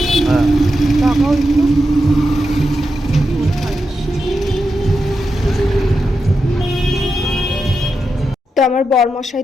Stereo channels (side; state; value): both; normal; correlation 0.87